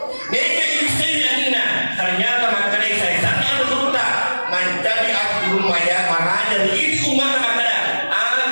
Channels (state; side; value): inverted; both; correlation -1.00